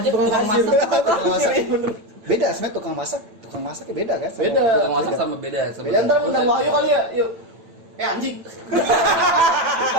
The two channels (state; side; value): late; left; 8.9 ms